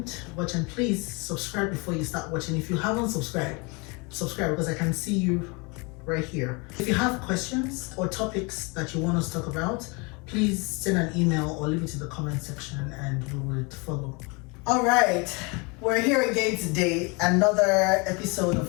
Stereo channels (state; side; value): quieter; right; 29.5 dB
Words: watch, and please subscribe before you start watching. If you haven't subscribed, subscribe because I can see you right here. If you have questions or topics that you want us to talk about, please send an email or leave it in the comment section and we will follow. All right, we're here again today, another episode of